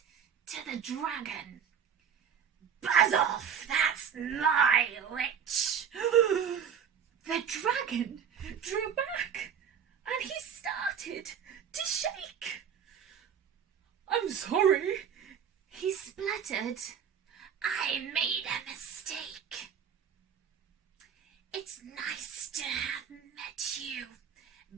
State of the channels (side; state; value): left; quieter; 7.8 dB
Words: to the dragon, buzz off, that's my witch. The dragon drew back, and he started to shake. I'm sorry, he spluttered. I made a mistake. It's nice to have met you,